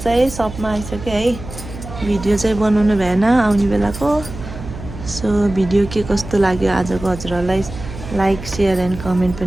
सपमा आइसकेँ है भिडियो चाहिँ बनाउनु भएन आउने बेलाको सो भिडियो के कस्तो लाग्यो आजको हजुरहरूलाई लाइक सेयर एन्ड कमेन्ट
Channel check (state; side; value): noise; right; hum, 12 dB below the sound